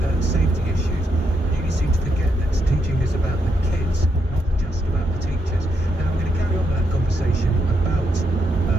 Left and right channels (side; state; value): both; normal; correlation 0.79